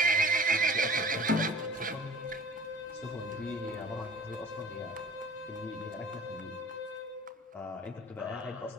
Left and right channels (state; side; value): normal; both; correlation 0.45